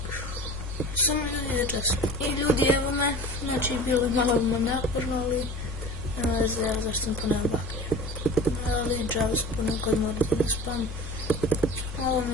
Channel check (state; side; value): normal; both; correlation 0.37